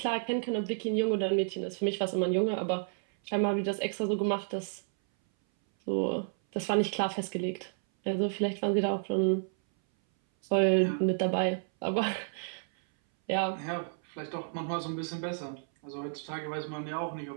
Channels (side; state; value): left; silent; 57 dB below the other